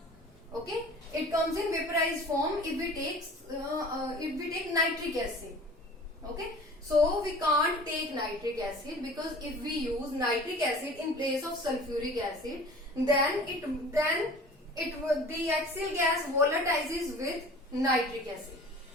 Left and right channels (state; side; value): normal; both; correlation 0.43